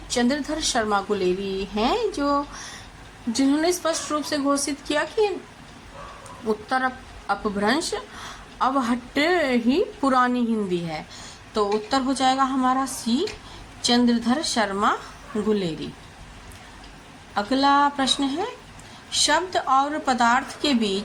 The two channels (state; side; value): identical; both; correlation 1.00